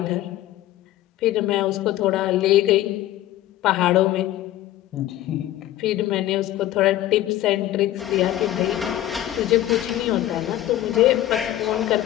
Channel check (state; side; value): quieter; right; 14.0 dB